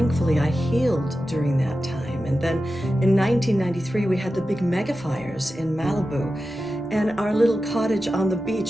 I healed during that time. And then in 1993, we had the big mega fires in Malibu, and our little cottage on the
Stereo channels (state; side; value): normal; both; correlation 0.92